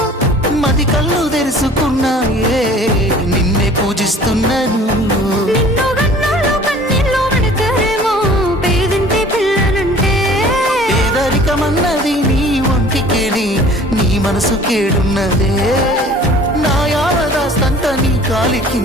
మది కళ్ళు తెరుచుకున్నాయే నిన్నే పూజిస్తున్నాను నిన్ను గన్నోళ్ళు కన్నీళ్ళు పెడతారేమో పేదింటి పిల్లనంటే పేదరికమన్నది నీ ఒంటికేని నీ మనసు కేడున్నదే నా యావదాస్తంత నీ కాలి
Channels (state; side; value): normal; both; correlation 0.49